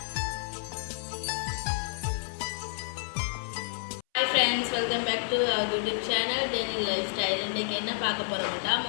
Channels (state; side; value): silent; right; 58 dB below the other